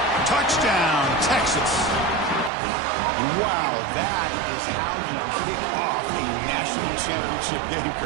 Touchdown, Texas. Wow, that is how you kick off a national championship game,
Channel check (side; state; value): left; drops out; at 2.5 s